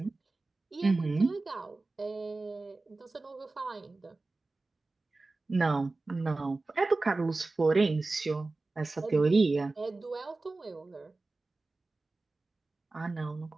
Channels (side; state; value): left; quieter; 3.4 dB